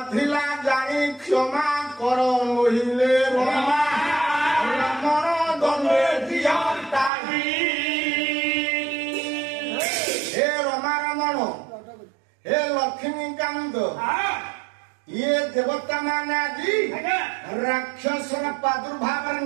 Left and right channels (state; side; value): drops out; left; at 7.1 s